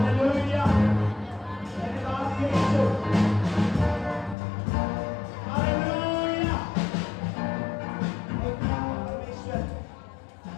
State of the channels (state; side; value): drops out; right; at 4.4 s